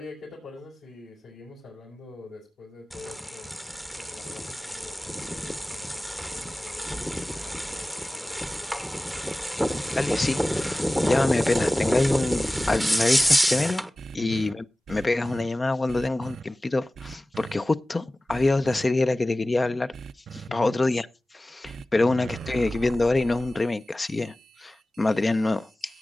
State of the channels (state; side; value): normal; both; correlation 0.97